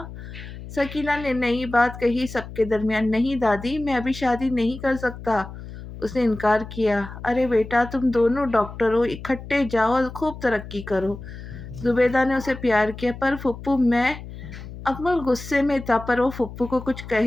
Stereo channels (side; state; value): left; noise; hum, 12 dB below the sound